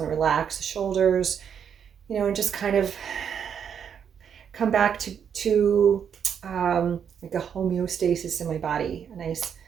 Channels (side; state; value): left; quieter; 7.8 dB